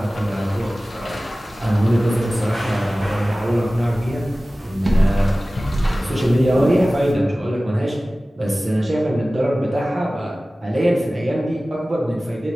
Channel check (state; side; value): normal; both; correlation 0.97